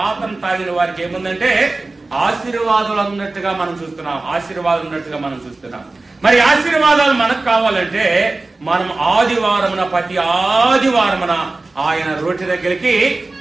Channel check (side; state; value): left; quieter; 3.3 dB